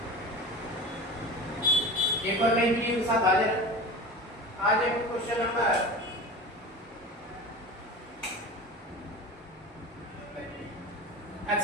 एक और नई वीडियो के साथ हाजिर। आज एक क्वेश्चन नंबर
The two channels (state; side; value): normal; both; correlation 0.32